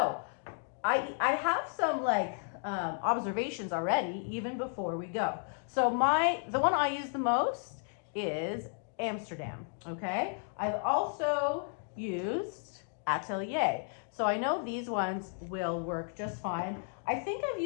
I have some like observations already, even before we go. So the one I use the most is Amsterdam, okay? I've also used Atelier. So I know these ones will work just fine. I think I've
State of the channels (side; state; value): right; silent; 56 dB below the other